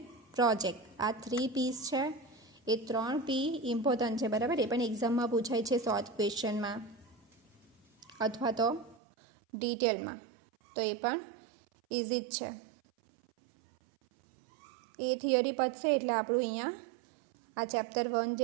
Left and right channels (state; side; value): drops out; left; at 9.0 s